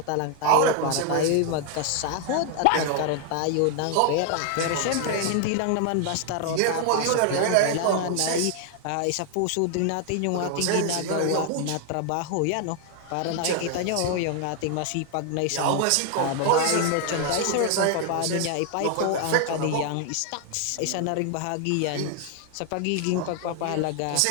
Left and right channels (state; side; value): different; both; correlation 0.00